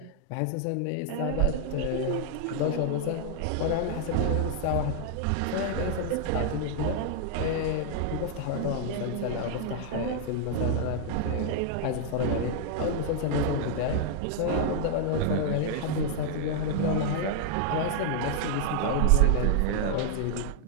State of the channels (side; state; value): both; different; correlation 0.00